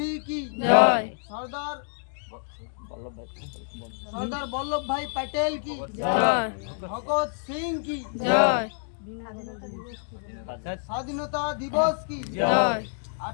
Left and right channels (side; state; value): right; silent; digital silence